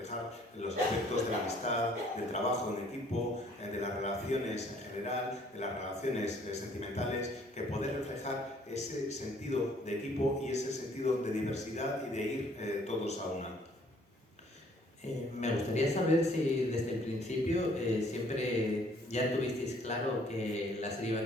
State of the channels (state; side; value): normal; both; correlation 0.60